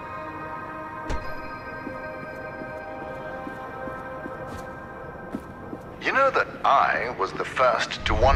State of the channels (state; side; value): identical; both; correlation 1.00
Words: You know that I was the first to